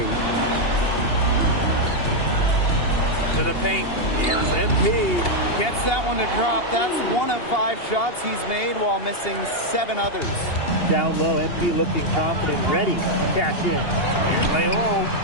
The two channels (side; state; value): right; late; 2.8 ms